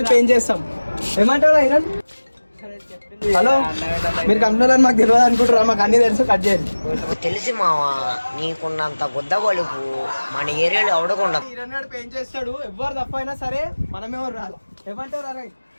పెయింట్ చేస్తాం. ఏమంటారా ఇరన్? హలో, మీరు కంపెనీలో మాకు తెలియదు అనుకుంటారా? మాకు అన్ని తెలుసు. కట్ చేయండి. తెలిసి మావా, నీకున్నంత గుద్ద బలుపు మన ఏరియాలో అవడకుండా. ఇరన్నాడు పెయింట్ చేస్తాడు. ఎవరు తప్ప అయినా సరే మనమేమో రాదు. ఏమంటారు? అరే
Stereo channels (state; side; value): inverted; both; correlation -1.00